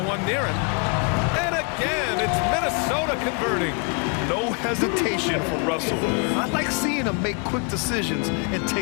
one near him. And again, it's Minnesota converting. No hesitation from Russell. I like seeing him make quick decisions and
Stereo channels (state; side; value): quieter; right; 35.5 dB